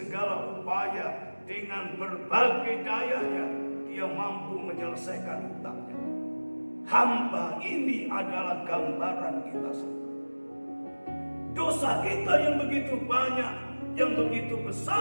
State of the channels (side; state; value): both; inverted; correlation -1.00